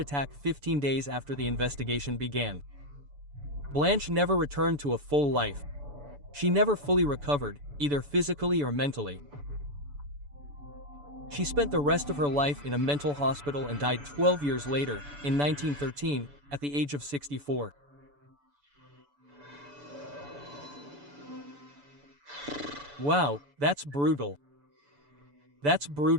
15 days after the investigation began. Blanche never returned to a full life. She never fully recovered, either physically or mentally. She spent the rest of her life in a mental hospital and died 12 years later, in 1913, at the age of 64. Wow, that's brutal. That's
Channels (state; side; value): late; left; 6.9 ms